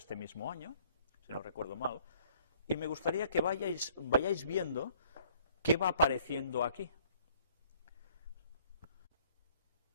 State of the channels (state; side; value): inverted; both; correlation -0.58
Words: mismo año, si no recuerdo mal, y me gustaría que vayáis viendo qué va apareciendo aquí.